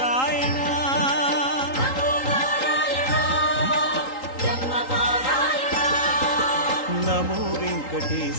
நமோ நாராயணா பிரம்மபாராயணா. நமோ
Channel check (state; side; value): late; right; 3.8 ms